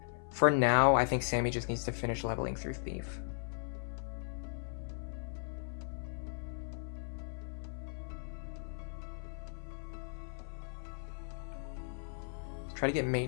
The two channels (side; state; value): right; silent; 53 dB below the other